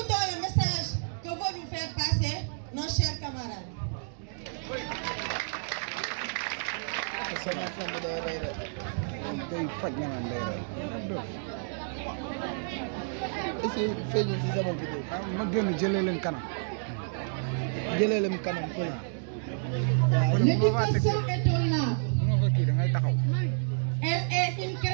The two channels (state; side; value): silent; left; digital silence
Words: le message que veulent nous faire passer nos chers camarades. L'éducation est un art. Elle est une